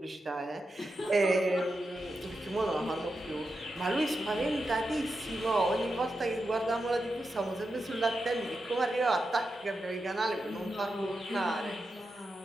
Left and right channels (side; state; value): both; normal; correlation 0.88